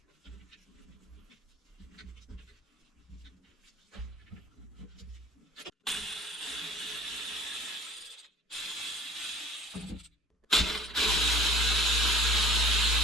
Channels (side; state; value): both; normal; correlation 0.47